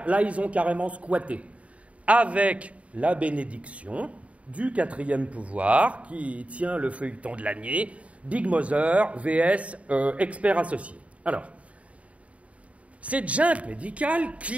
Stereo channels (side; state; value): left; late; 0.065 ms